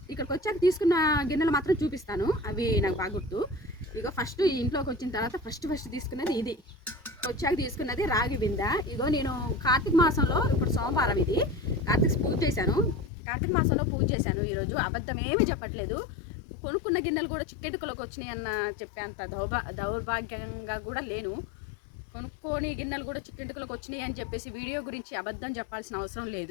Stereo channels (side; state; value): right; drops out; at 13.1 s